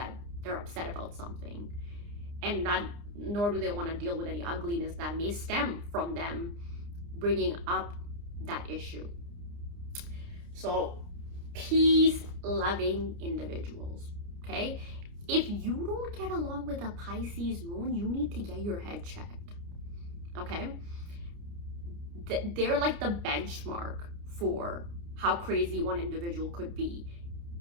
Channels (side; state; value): left; late; 29 ms